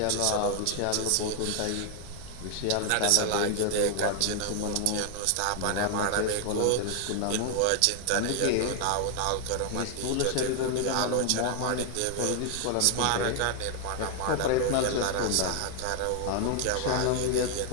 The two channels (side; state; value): both; different; correlation 0.00